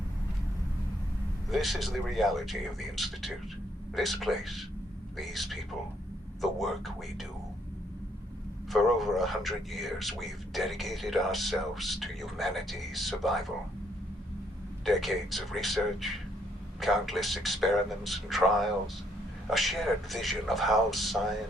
This is the reality of the Institute. This place, these people, the work we do. For over 100 years, we've dedicated ourselves to humanity's survival. Decades of research, countless experiments and trials, a shared vision of how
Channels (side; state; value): both; normal; correlation 0.70